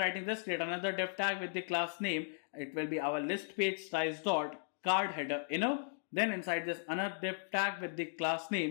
this, create another div tag with the class name. It will be our list page size.card header inner. Then inside this another div tag with the class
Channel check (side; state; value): right; silent; digital silence